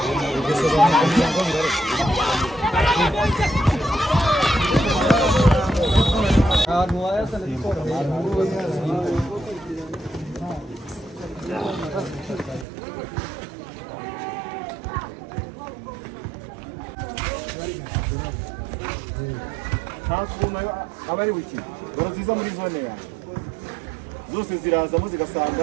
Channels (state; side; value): drops out; left; at 12.7 s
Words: abari wiki baraziza muri zone ya zose zirazamo